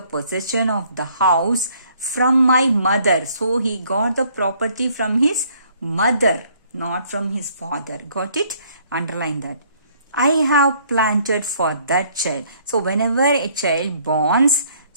of the house from my mother. So he got the property from his mother, not from his father. Got it? Underline that. I have planted for that child. So whenever a child borns,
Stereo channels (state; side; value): inverted; both; correlation -0.63